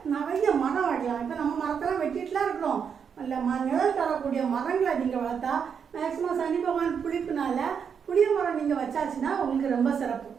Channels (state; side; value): quieter; left; 7.0 dB